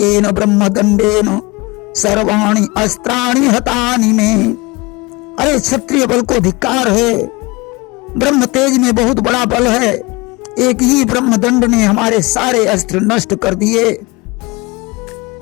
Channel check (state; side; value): quieter; right; 24.3 dB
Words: ब्रह्मदंडेन सर्वाणि अस्त्राणि हतानि में। अरे, क्षत्रिय बल को धिक्कार है, ब्रह्म तेज में बहुत बड़ा बल है। एक ही ब्रह्मदंड ने हमारे सारे अस्त्र नष्ट कर दिए।